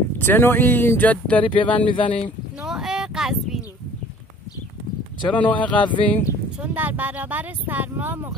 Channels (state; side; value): normal; both; correlation 0.51